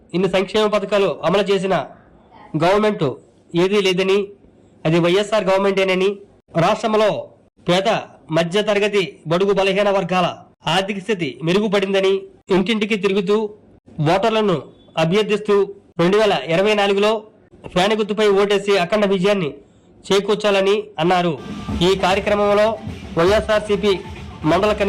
ఇన్ని సంక్షేమ పథకాలు అమలు చేసిన గవర్నమెంట్ ఏదీ లేదని, అది వైఎస్ఆర్ గవర్నమెంటేనని, రాష్ట్రంలో పేద మధ్య తరగతి బడుగు బలహీన వర్గాల ఆర్థిక స్థితి మెరుగుపడిందని ఇంటింటికి తిరుగుతూ ఓటర్లను అభ్యర్థిస్తూ 2024లో ఫ్యాన్ గుర్తుపై ఓటేసి అఖండ విజయాన్ని చేకూర్చాలని అన్నారు. ఈ కార్యక్రమంలో వైఎస్ఆర్సీపీ మండల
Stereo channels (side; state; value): both; identical; correlation 1.00